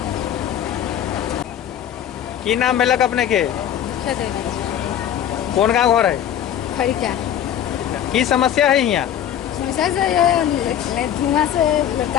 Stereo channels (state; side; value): quieter; right; 10.2 dB